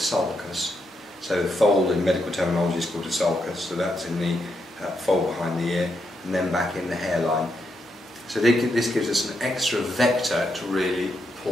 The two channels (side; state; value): both; normal; correlation 0.81